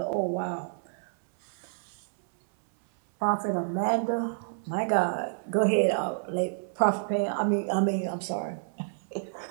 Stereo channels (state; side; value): silent; left; 59 dB below the other